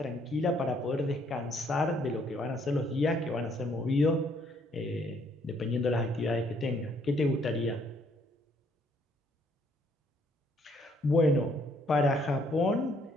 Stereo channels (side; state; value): both; normal; correlation 0.67